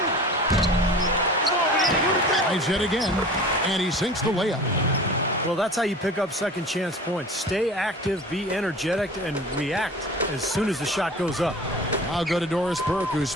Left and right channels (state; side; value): normal; both; correlation 0.40